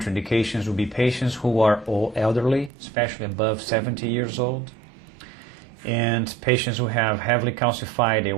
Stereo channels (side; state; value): left; drops out; at 2.7 s